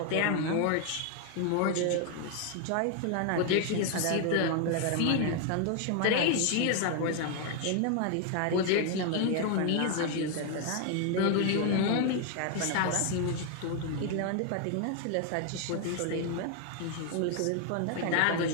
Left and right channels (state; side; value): different; both; correlation 0.00